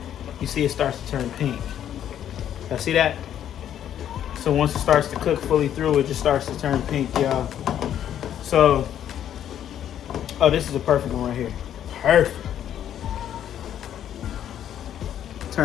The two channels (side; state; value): right; quieter; 10.3 dB